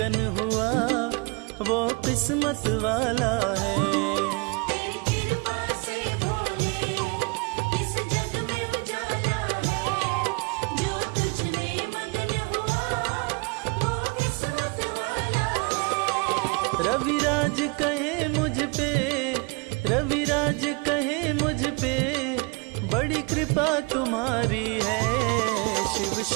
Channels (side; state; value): left; quieter; 29.6 dB